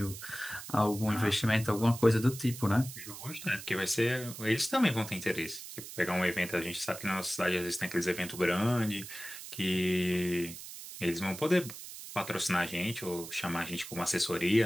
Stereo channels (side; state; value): right; noise; hiss, 12 dB below the sound